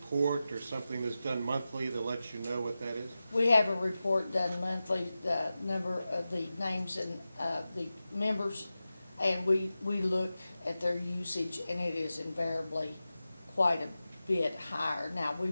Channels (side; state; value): both; inverted; correlation -0.94